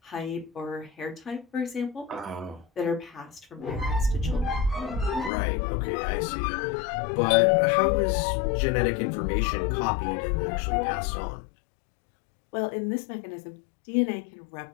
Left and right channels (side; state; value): right; drops out; at 5.3 s